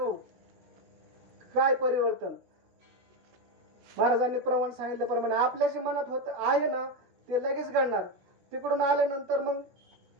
काय परिवर्तन. महाराजांनी प्रमाण सांगितल्याप्रमाणे आपल्या जे मनात होत आहे ना ते लगेच घडणार. तिकडून आल्यानंतर मग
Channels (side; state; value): left; late; 16 ms